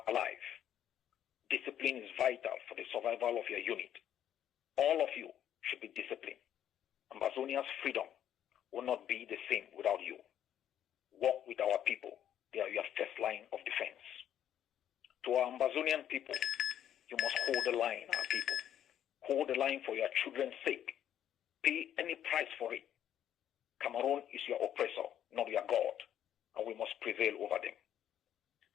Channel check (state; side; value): quieter; right; 10.5 dB